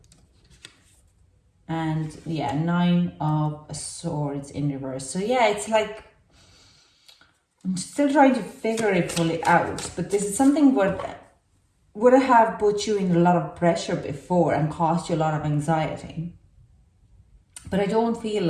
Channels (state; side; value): identical; both; correlation 1.00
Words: And yeah, 9 of Swords in reverse. So yeah, it's like, I'm still trying to figure it fully out, but this is something would have put you in a lot of pressure before and caused you a lot of anxiety. But I don't feel